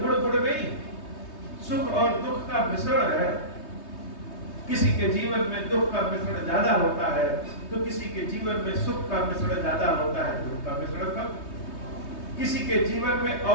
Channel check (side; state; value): right; late; 3.2 ms